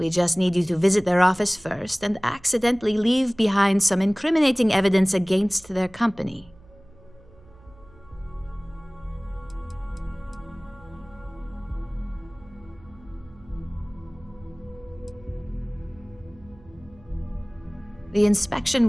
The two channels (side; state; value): right; noise; hum, 25 dB below the sound